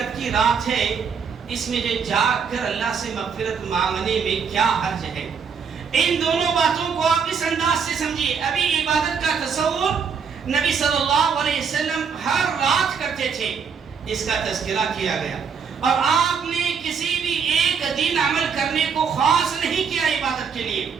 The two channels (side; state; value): left; quieter; 6.3 dB